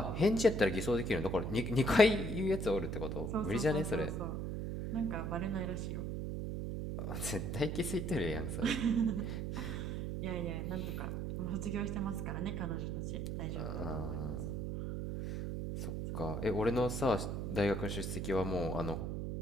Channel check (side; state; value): right; noise; hum, 3 dB below the sound